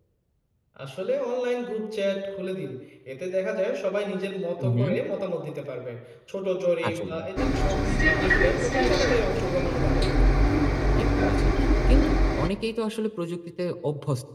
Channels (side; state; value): both; identical; correlation 1.00